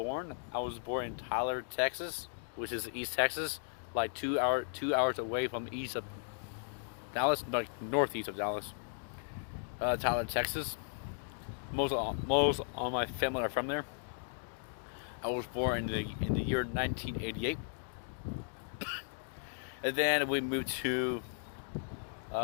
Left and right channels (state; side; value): silent; right; digital silence